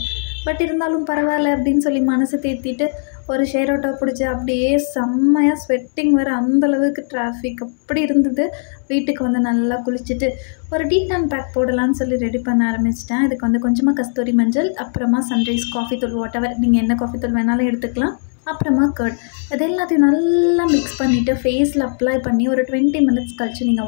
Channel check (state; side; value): silent; right; digital silence